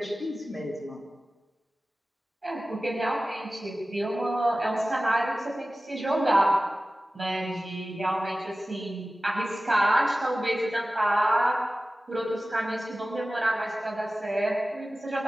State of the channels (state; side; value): normal; both; correlation 0.96